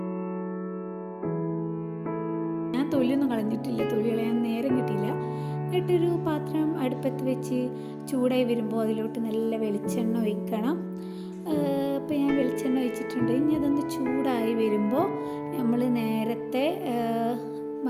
ഞാൻ തൊലിയൊന്നും കളഞ്ഞിട്ടില്ല, തൊലി കളയാൻ നേരം കിട്ടിയില്ല. എന്നിട്ടൊരു പാത്രം അടുപ്പത്ത് വെച്ച് ചൂടായി വരുമ്പോൾ അതിലോട്ട് നല്ല വെളിച്ചെണ്ണ ഒഴിക്കണം. അപ്പോൾ ഞാൻ വെളിച്ചെണ്ണ ഒഴിച്ചിട്ടുണ്ട്. ഇനി അതൊന്ന് ചൂടായി വരുമ്പോൾ നമ്മൾ നേരത്തെ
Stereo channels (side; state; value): both; identical; correlation 1.00